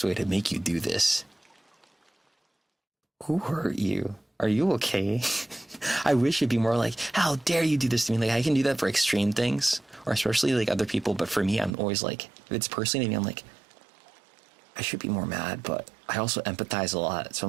way to make you do this? Who hurt you? Are you okay? I wish it'd be more like, how dare you do this to me? I can do that for extreme things, or especially other people, but for me, I'm always if it's personally to me, I'm like, I should be more mad, but I also empathize a lot. So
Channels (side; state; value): left; drops out; at 11.7 s